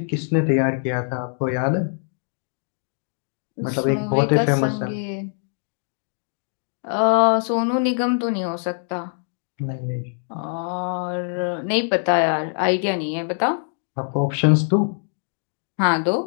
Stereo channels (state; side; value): silent; right; digital silence